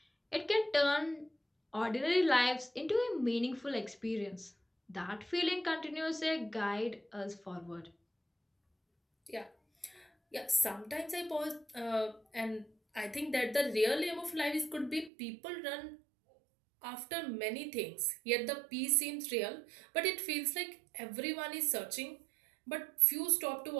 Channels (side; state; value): left; drops out; at 15.1 s